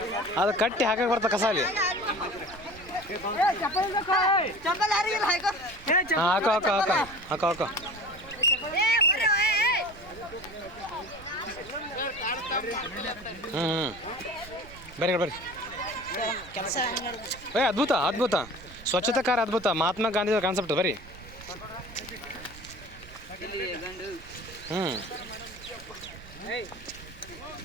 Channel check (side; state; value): right; noise; rumble, 19 dB below the sound